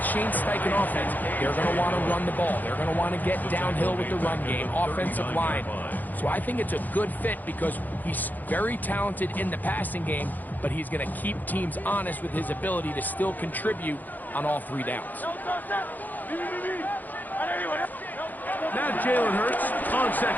Shane Steichen offense, they're going to want to run the ball. They're going to want to get downhill with the run game, offensive line. So I think it's a good fit because he's very talented in the passing game, but he's going to keep teams honest with his ability to still contribute on all three downs. Now Jalen Hurts on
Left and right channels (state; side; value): late; right; 0.084 ms